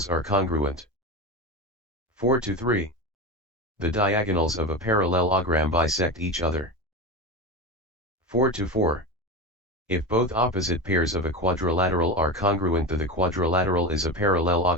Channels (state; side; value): normal; both; correlation 0.21